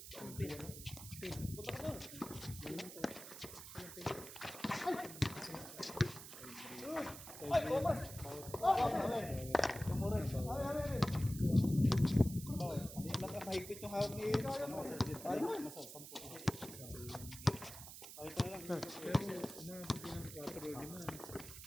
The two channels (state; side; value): noise; right; hiss, 12 dB below the sound